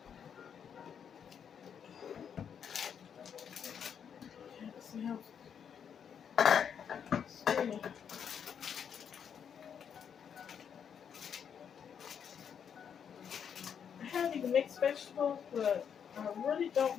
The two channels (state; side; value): quieter; right; 7.8 dB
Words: See how steaming. I have even mixed vegetables, but I really